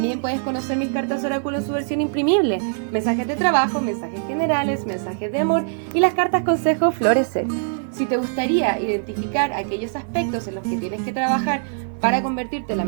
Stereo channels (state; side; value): silent; left; 56 dB below the other